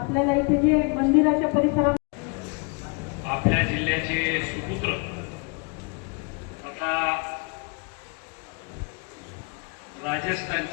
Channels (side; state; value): right; quieter; 33.2 dB